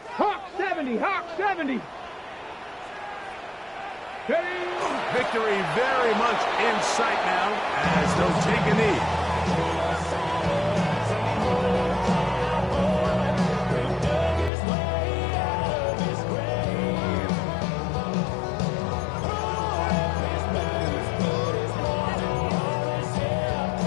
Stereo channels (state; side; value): drops out; right; at 14.5 s